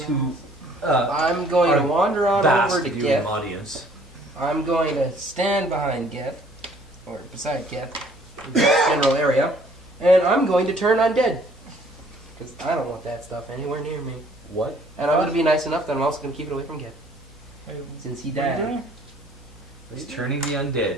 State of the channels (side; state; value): both; normal; correlation 0.58